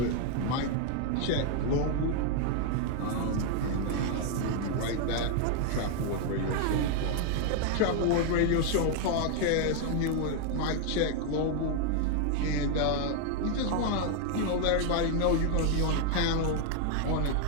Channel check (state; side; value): different; both; correlation 0.00